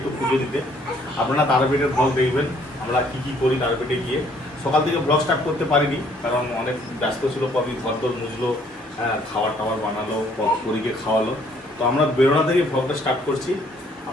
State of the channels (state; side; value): normal; both; correlation 0.63